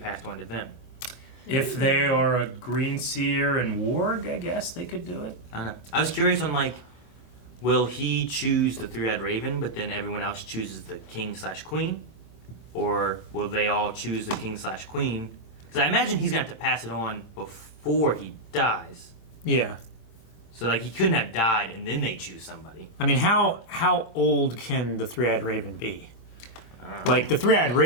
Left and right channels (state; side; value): late; right; 24 ms